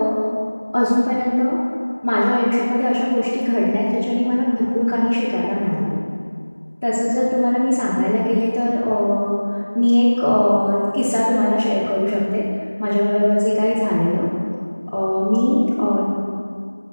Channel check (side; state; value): both; inverted; correlation -1.00